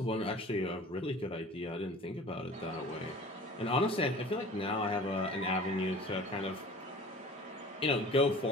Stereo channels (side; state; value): both; normal; correlation 0.43